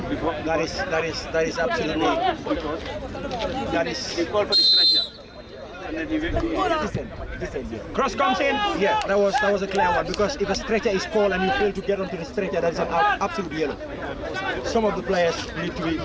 is absolutely. That is. They call for the stretcher. Cross comes in. Yeah, that was a clear one, because if a stretcher is called and you fail to get onto the stretcher, that is an absolute yellow. Some of the players need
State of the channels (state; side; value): identical; both; correlation 1.00